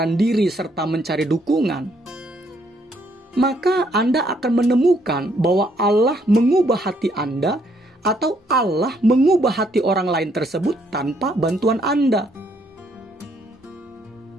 diri serta mencari dukungan, maka Anda akan menemukan bahwa Allah mengubah hati Anda atau Allah mengubah hati orang lain tersebut tanpa bantuan Anda.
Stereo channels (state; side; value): normal; both; correlation 0.70